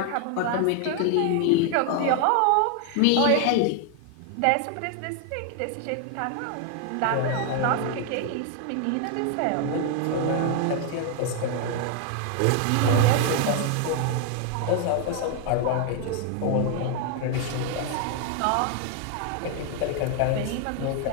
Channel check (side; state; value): both; different; correlation 0.00